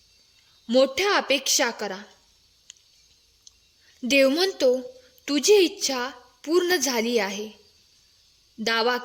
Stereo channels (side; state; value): both; identical; correlation 1.00